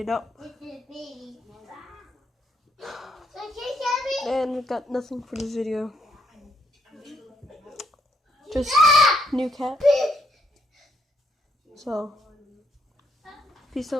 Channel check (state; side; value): normal; both; correlation 0.73